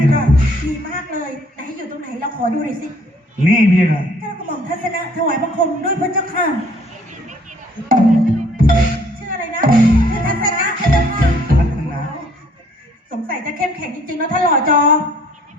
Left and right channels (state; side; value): normal; both; correlation 0.60